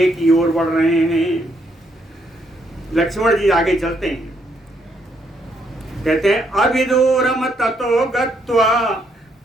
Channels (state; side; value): normal; both; correlation 0.73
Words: की ओर बढ़ रहे हैं। लक्ष्मण जी आगे चलते हैं। कहते हैं अभिदूरम ततो गत्वा